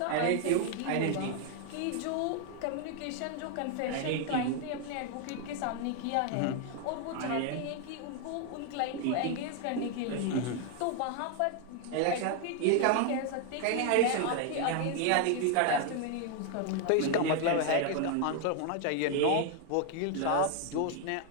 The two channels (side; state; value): both; different; correlation 0.01